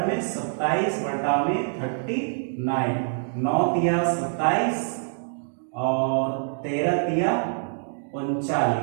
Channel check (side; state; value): left; silent; digital silence